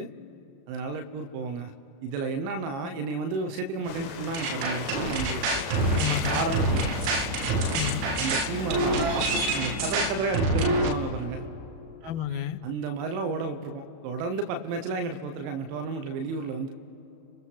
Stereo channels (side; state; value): left; late; 34 ms